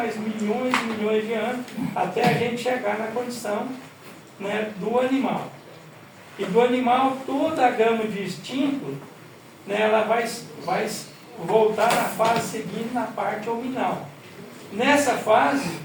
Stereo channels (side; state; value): both; identical; correlation 1.00